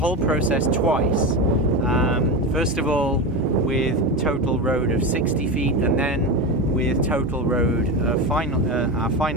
process twice. First of all with total road of 60 feet, and then with total road, our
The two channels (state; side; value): normal; both; correlation 0.19